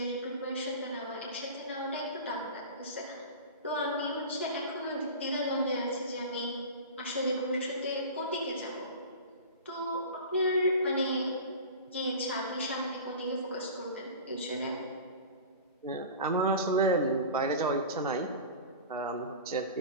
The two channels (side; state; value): both; inverted; correlation -0.33